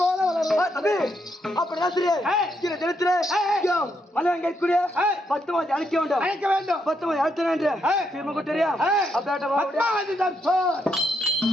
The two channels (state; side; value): normal; both; correlation 0.78